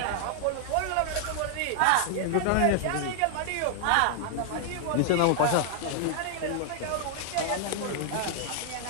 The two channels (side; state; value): both; different; correlation 0.00